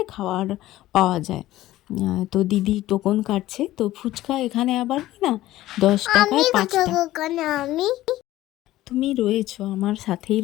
খাওয়ার পাওয়া যায়। তো দিদি টোকন কাটছে। তো ফুচকা এখানে আবার কি না 10 টাকায় 5টা। তুমি রয়েছো, আমার সাথেই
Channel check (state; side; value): quieter; right; 15.5 dB